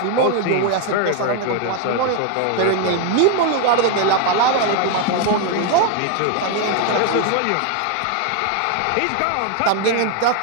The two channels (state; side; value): different; both; correlation 0.01